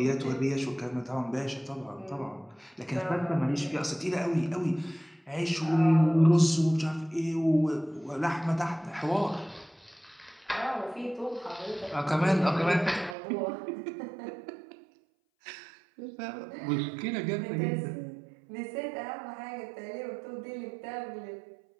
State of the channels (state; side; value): drops out; left; at 13.2 s